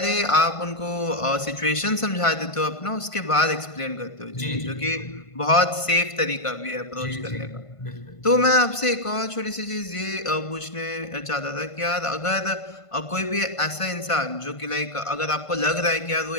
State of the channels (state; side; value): late; right; 1.5 ms